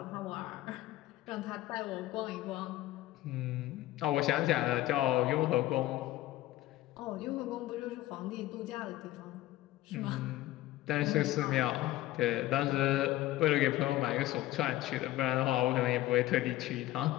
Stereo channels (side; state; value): right; quieter; 15.9 dB